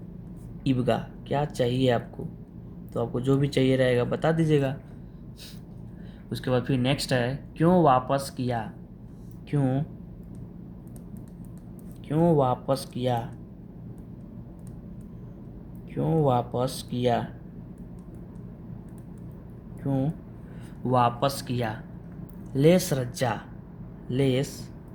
इब्गा क्या चाहिए आपको, तो आपको जो भी चाहिए रहेगा बता दीजिएगा। उसके बाद फिर नेक्स्ट है क्यों वापस किया। क्यों क्यों वापस किया। क्यों वापस किया। क्यों वापस किया। लेस रज्जा। लेस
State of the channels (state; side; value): identical; both; correlation 1.00